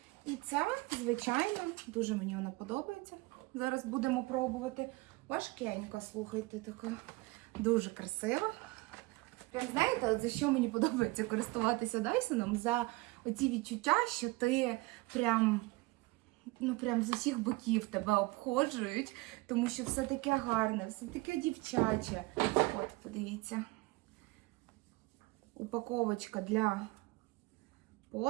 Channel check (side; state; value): left; quieter; 22.6 dB